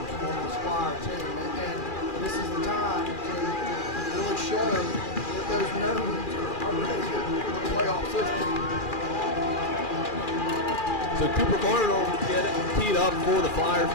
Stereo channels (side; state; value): right; late; 2.4 ms